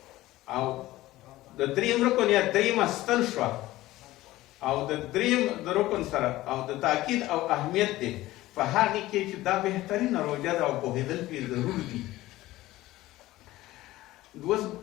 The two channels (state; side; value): quieter; right; 16.9 dB